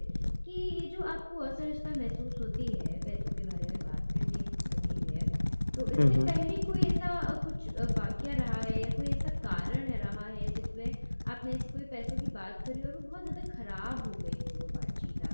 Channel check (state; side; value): inverted; both; correlation -1.00